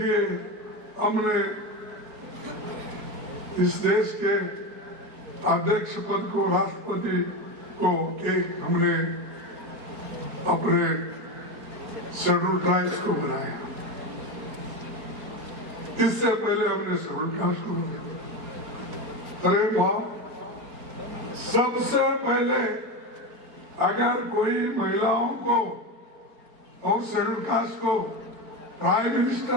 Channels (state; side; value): late; left; 4.3 ms